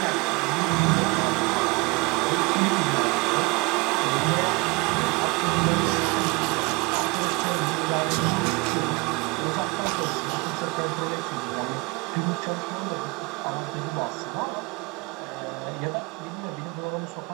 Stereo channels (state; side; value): quieter; left; 26.8 dB